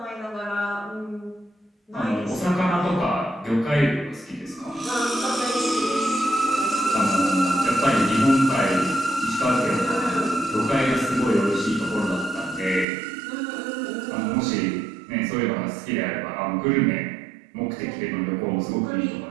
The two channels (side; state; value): left; drops out; at 12.9 s